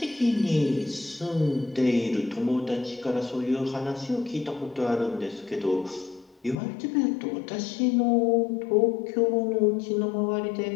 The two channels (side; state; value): right; drops out; at 6.6 s